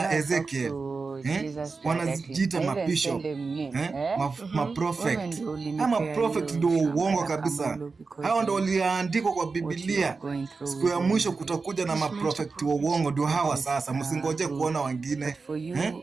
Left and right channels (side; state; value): left; quieter; 4.4 dB